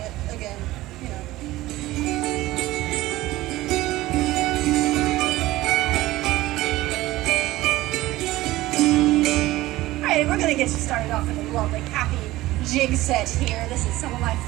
again, you know. Alright, we're gonna get you started off with a lovely, happy jig set here. This is some of my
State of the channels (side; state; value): left; quieter; 17.3 dB